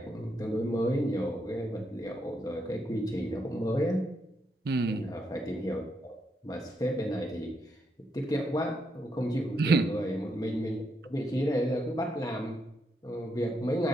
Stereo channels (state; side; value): normal; both; correlation 0.79